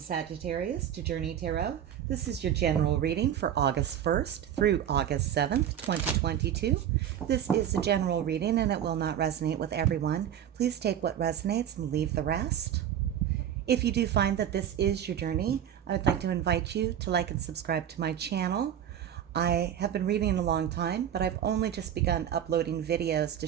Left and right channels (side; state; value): left; quieter; 9.9 dB